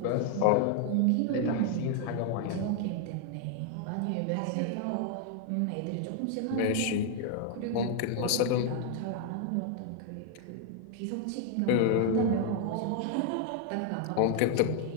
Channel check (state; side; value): different; both; correlation 0.00